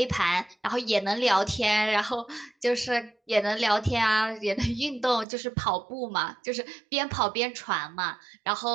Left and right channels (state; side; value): drops out; left; at 5.2 s